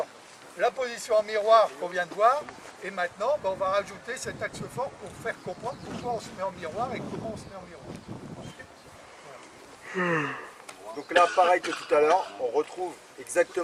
la position en miroir qu'on vient de voir. Et maintenant, ben, on va rajouter cet axe fort pour faire comprendre pourquoi on se met en miroir et comment on se met en miroir. Donc là, pareil que tout à l'heure, on retrouve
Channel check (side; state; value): both; identical; correlation 1.00